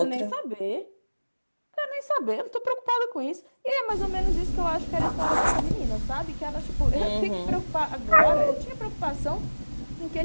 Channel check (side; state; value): both; inverted; correlation -1.00